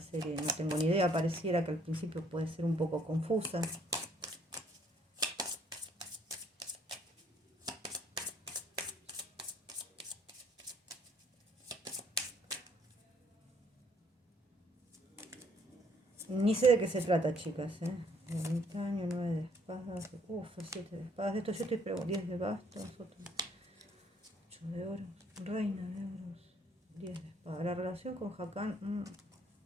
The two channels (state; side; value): normal; both; correlation 0.64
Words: no tengo ni idea. Pareciera que al principio puede ser un poco confusa. Ni sé de qué se trata, chicas, ¿eh? Ermitaño, 9 de espadas, 7 de espadas. Esto yo estoy preguntando, 10 de bastos, 8 de oros, reina de oros, 10 de espadas. La relación con Hakan,